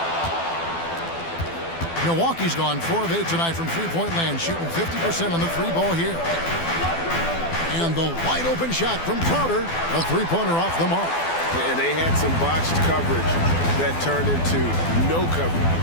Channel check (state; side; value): late; right; 12 ms